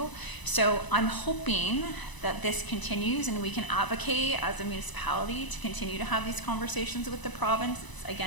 So I'm hoping that this continues and we can advocate as a municipality to continue to have these conversations with the province.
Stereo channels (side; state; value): right; late; 1.0 ms